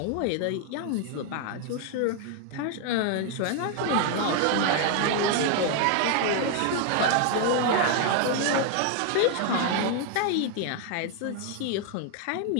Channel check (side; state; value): both; different; correlation 0.00